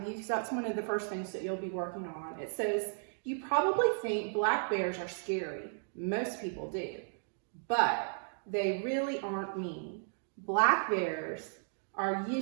you because that's one of the first things that you'll be working on. It says, you probably think black bears are scary. Most people do, but they really aren't mean. Black bears are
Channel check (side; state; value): left; silent; digital silence